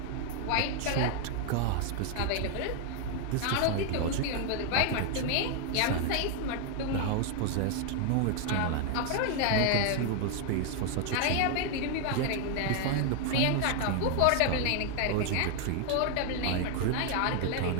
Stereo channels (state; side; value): different; both; correlation 0.00